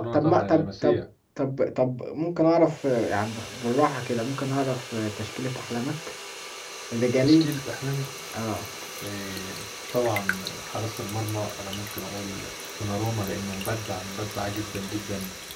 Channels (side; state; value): both; identical; correlation 1.00